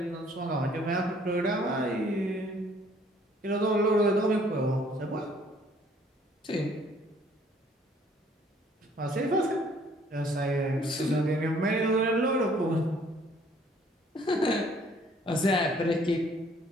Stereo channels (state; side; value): normal; both; correlation 0.60